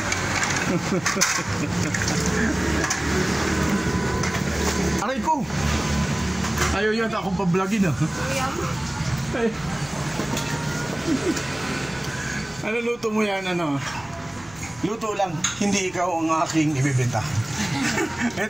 Aray ko! Ayaw yata akong pablogin Ano luto mo yan? Luto lang, hindi ikaw ang aking ibibenta.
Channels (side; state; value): right; noise; rumble, 23 dB below the sound